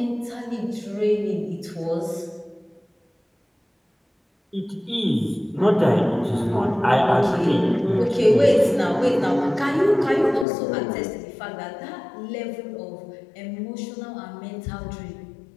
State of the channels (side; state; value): right; drops out; at 10.5 s